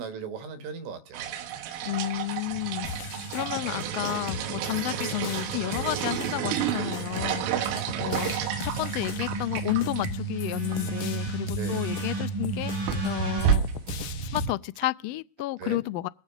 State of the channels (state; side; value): late; left; 16 ms